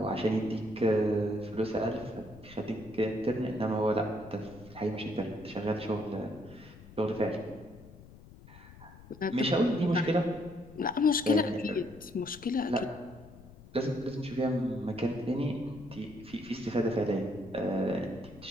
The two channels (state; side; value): noise; left; rumble, 19 dB below the sound